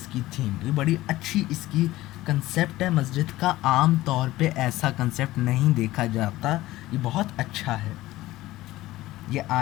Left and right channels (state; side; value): quieter; right; 17.0 dB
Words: کی تھیم یہ بڑی اچھی اس کی کنسیپٹ ہے مسجد کا. عام طور پہ ایسا کنسیپٹ نہیں دیکھا جاتا. یہ بہت اچھا ہے. یہ